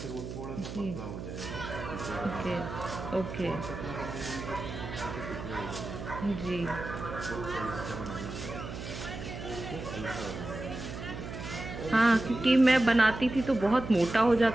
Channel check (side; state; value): right; noise; hum, 8 dB below the sound